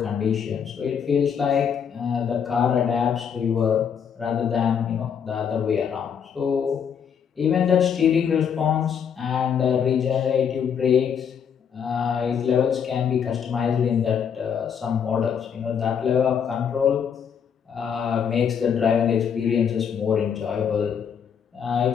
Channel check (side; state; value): right; quieter; 7.5 dB